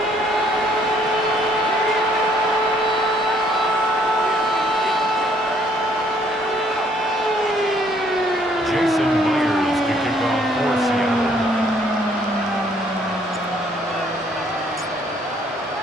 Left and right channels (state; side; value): normal; both; correlation 0.64